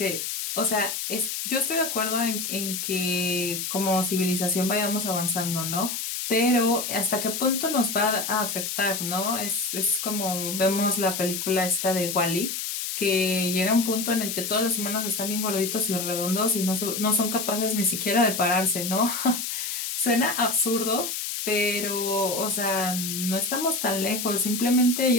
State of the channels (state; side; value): noise; left; hiss, 4 dB below the sound